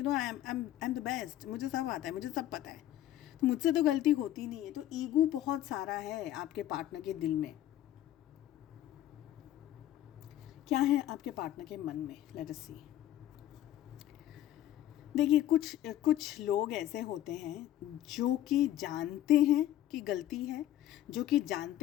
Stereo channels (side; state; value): right; quieter; 12.9 dB